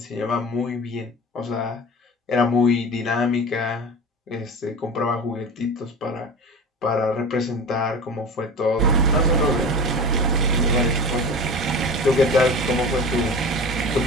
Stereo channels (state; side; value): normal; both; correlation 0.33